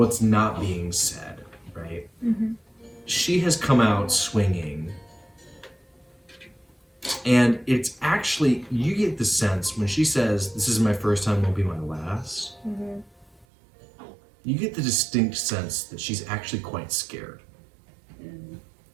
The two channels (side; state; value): left; drops out; at 13.5 s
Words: not being said, right? she has come out swinging. And it's actually, you get the sense when she says, "This is my first time, won't be my last." Mm-hmm. You get the distinct sense that she's actually quite scared.